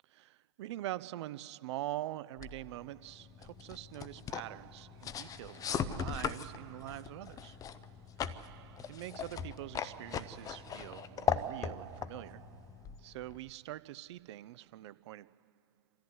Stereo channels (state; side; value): normal; both; correlation 0.23